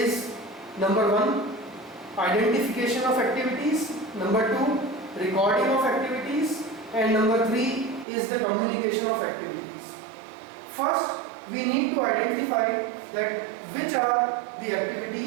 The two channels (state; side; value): drops out; left; at 8.1 s